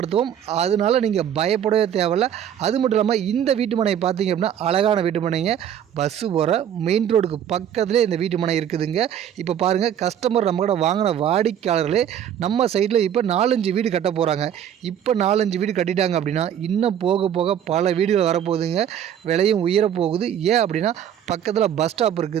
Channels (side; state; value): left; quieter; 9.6 dB